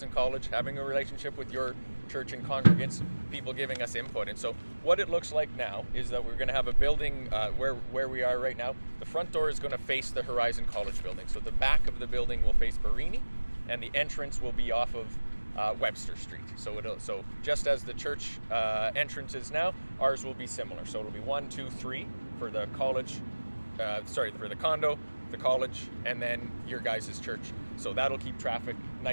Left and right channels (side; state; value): both; inverted; correlation -1.00